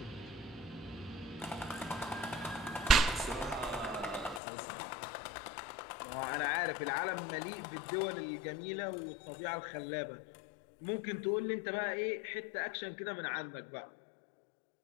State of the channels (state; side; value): drops out; right; at 4.4 s